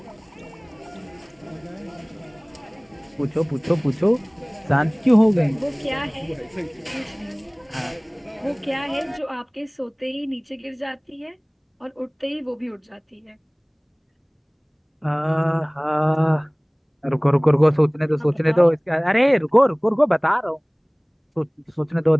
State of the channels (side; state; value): both; identical; correlation 1.00